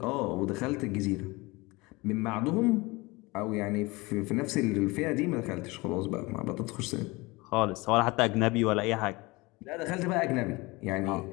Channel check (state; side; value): quieter; right; 23.4 dB